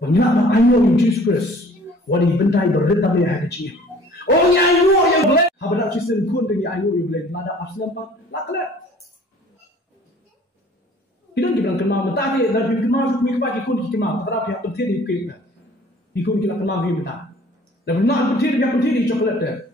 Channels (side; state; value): both; normal; correlation 0.52